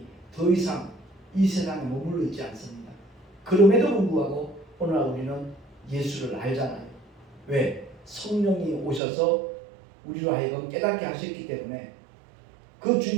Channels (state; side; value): drops out; left; at 9.0 s